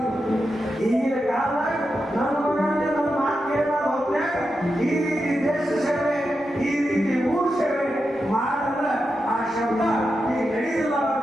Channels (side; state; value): both; normal; correlation 0.88